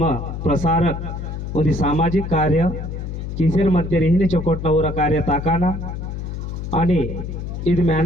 प्रसारक उदी सामाजिक कार्य किसेर मध्ये रिहिनी चोकोटना उरा कार्य ताकाना आणि इद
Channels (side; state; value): left; noise; hum, 6 dB below the sound